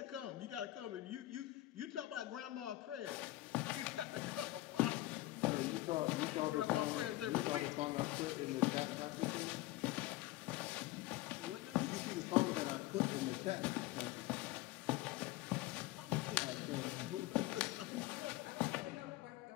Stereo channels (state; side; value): quieter; right; 17.6 dB